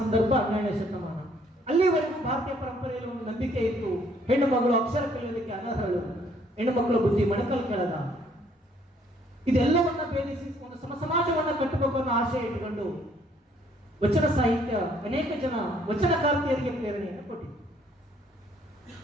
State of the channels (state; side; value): normal; both; correlation 0.64